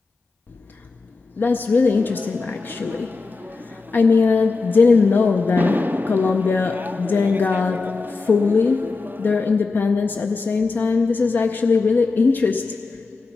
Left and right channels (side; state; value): right; quieter; 4.1 dB